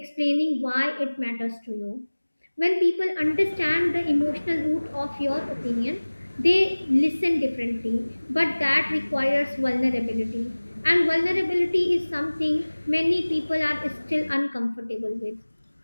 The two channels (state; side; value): inverted; both; correlation -1.00